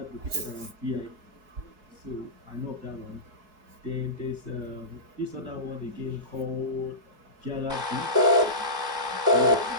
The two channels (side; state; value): left; late; 4.7 ms